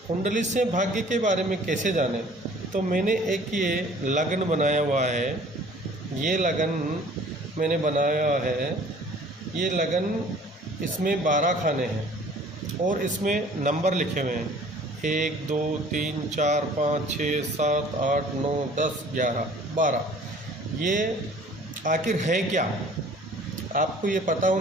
कुंडली से भाग्य के बारे में कैसे जानें, तो मैंने एक ये लगन बनाया हुआ है। ये लगन मैंने बनाया है। ये लगन इसमें 12 खाने हैं और इसमें नंबर लिखे हुए हैं 1 2 3 4 5 6 7 8 9 10 11 12। ये आखिर है क्या, आपको ये पता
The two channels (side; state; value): both; normal; correlation 0.51